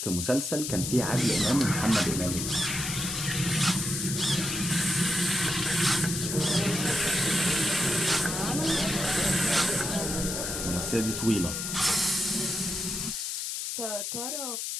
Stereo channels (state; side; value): noise; left; hiss, 3 dB below the sound